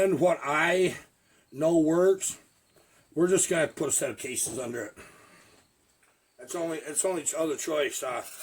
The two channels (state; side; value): identical; both; correlation 1.00